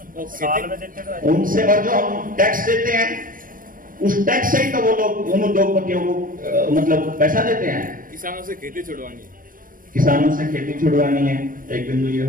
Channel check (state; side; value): late; left; 0.40 ms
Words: साल में देते तो उनसे, और जो हम टैक्स देते हैं उस टैक्स से ही तो वो लोग उन उद्योगपतियों को मतलब पैसा देते हैं। किसानों से खेती छुड़वानी है, किसानों से खेती छुड़वानी है, एक बिंदु ये